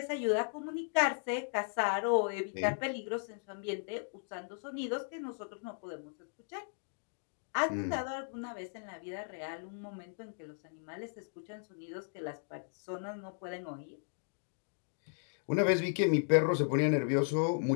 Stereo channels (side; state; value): right; silent; digital silence